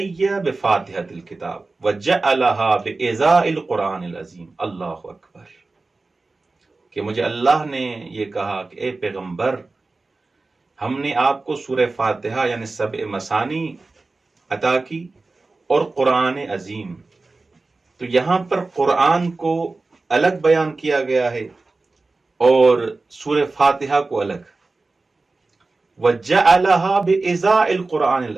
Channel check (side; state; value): left; quieter; 3.5 dB